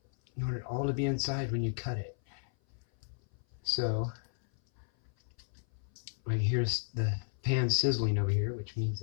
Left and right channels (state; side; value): silent; right; 55 dB below the other